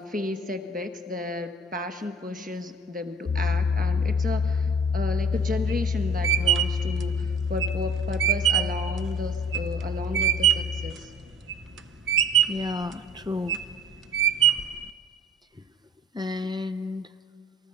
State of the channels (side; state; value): both; normal; correlation 0.47